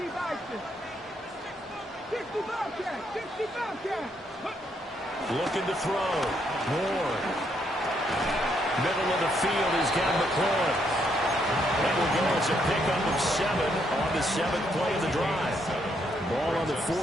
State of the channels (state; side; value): normal; both; correlation 0.74